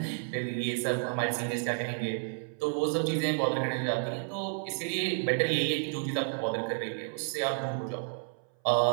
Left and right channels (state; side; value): silent; left; 57 dB below the other